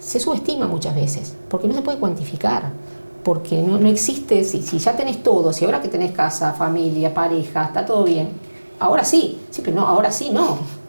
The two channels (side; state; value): both; inverted; correlation -1.00